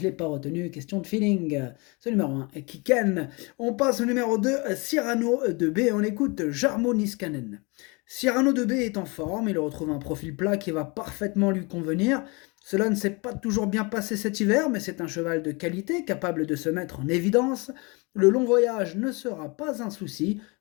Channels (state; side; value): quieter; right; 28.6 dB